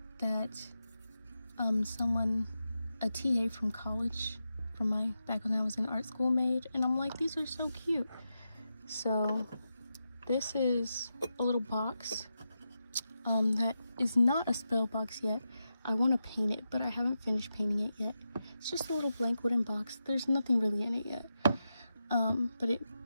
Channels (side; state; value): both; inverted; correlation -0.88